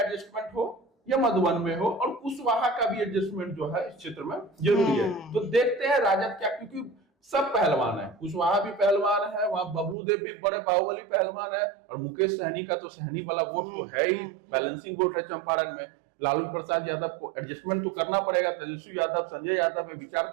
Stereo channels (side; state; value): left; drops out; at 10.0 s